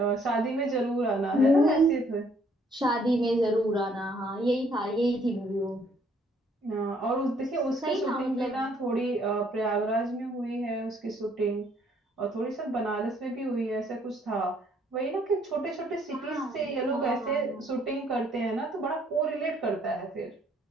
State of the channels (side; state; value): both; normal; correlation 0.65